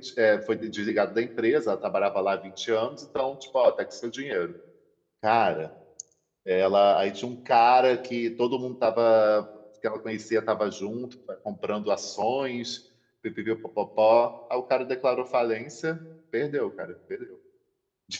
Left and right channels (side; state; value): both; identical; correlation 1.00